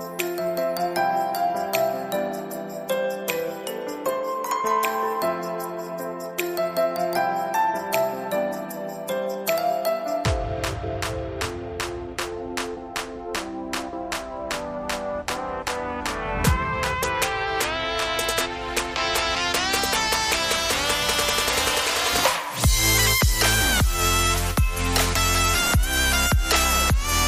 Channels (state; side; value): identical; both; correlation 1.00